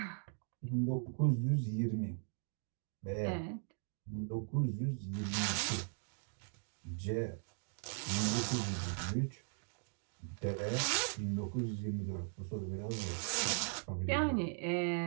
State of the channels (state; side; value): silent; left; 52 dB below the other